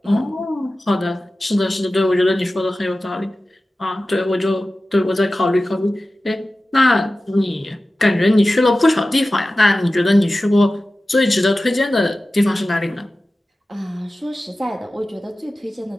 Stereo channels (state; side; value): normal; both; correlation 0.95